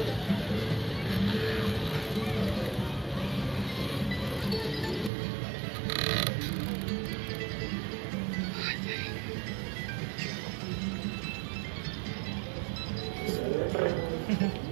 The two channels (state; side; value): drops out; left; at 5.1 s